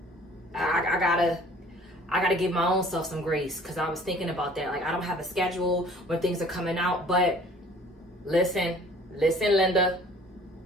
I gotta give my own self some grace because I was thinking about that. Like, I don't have a schedule when things are coming out, but Listen, Linda.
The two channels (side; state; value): both; normal; correlation 0.52